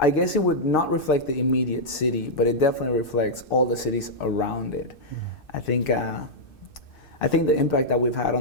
guess it would not reflect the immediate city, but it definitely reflects all the cities around it. I think the impact that we've had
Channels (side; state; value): right; late; 2.6 ms